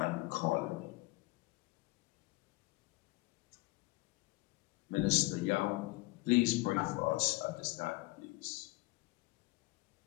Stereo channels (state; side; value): quieter; right; 22.2 dB